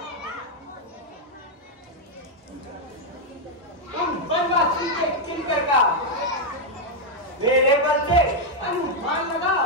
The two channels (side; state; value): both; normal; correlation 0.00